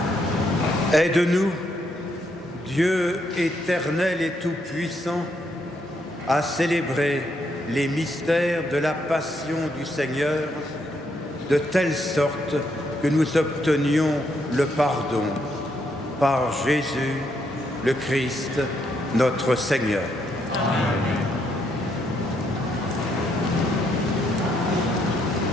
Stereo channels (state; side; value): normal; both; correlation 0.76